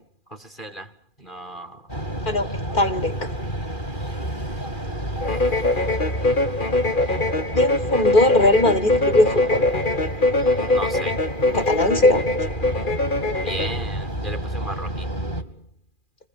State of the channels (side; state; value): right; late; 2.4 ms